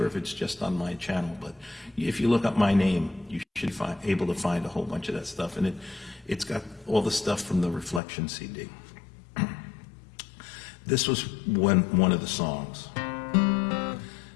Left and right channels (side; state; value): right; drops out; at 8.0 s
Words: if it's just on my channel, but if you look up my name, you should be able to find a whole bunch of that stuff. And it's got all the stuff from the Reflection CD. This was one of the songs.